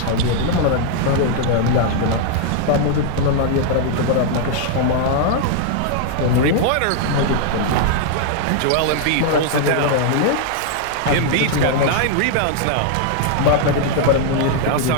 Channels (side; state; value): both; different; correlation 0.00